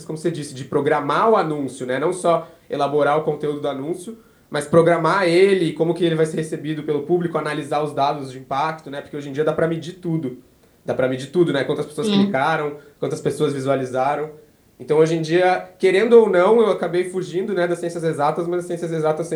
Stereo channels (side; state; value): both; identical; correlation 1.00